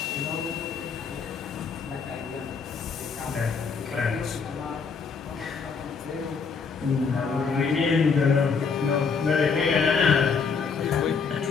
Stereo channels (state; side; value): quieter; right; 5.4 dB